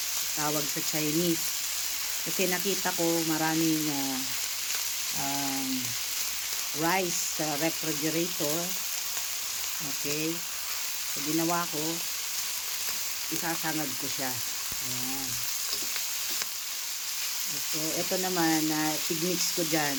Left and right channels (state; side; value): identical; both; correlation 1.00